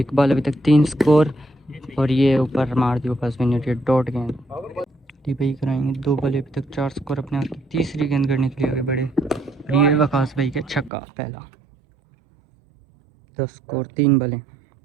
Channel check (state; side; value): drops out; left; at 10.9 s